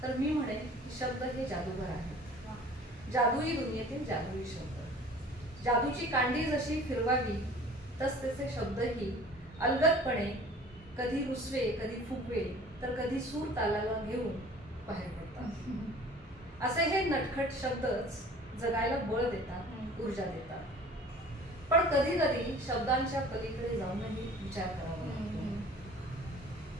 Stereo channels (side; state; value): both; normal; correlation 0.47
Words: तर मी म्हणेन की शब्द हे जादूगार आहेत. जादुई दुनियेतील जादुई शब्द. जादूची कांडी जशी फिरवावी तसतसे शब्दही अलगदपणे कधी रुसवे, कधी फुगवे तर कधी सूर तालाला घेऊन बाहेर पडतात. असे हे नटखट शब्दच जगायला बळ देतात, ऊर्जा देतात. पण कधी कधी शब्दांच्या पलीकडे जाऊनही विचार करावा लागतो.